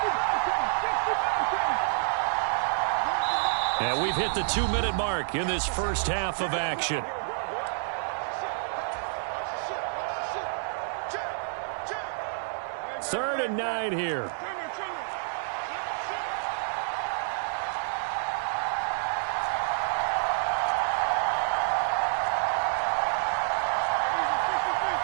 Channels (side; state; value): left; silent; digital silence